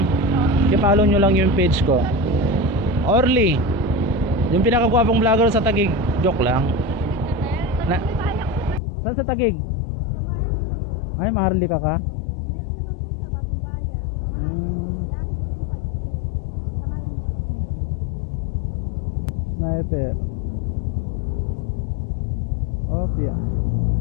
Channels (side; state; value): right; drops out; at 8.8 s